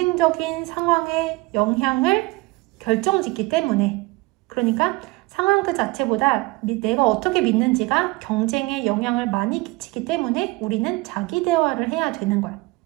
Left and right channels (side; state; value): left; quieter; 22.6 dB